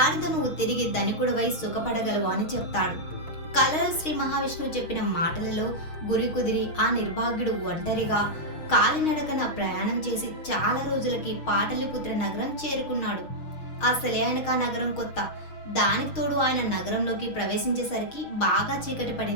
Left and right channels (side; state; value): right; late; 6.4 ms